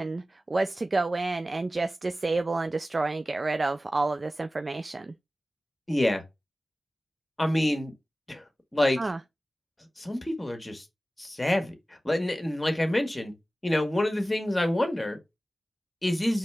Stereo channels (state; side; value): normal; both; correlation 0.96